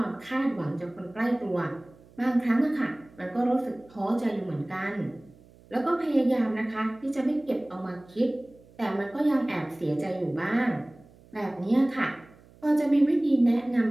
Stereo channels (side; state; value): right; noise; hum, 26 dB below the sound